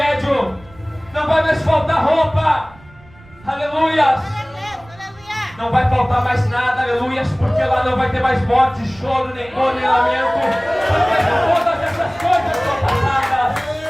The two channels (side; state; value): right; noise; rumble, 25 dB below the sound